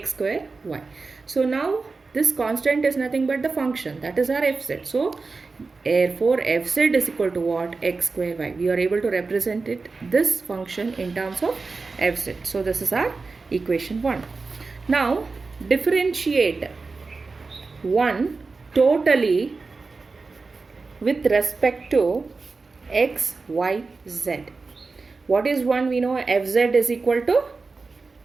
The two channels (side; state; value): left; quieter; 4.1 dB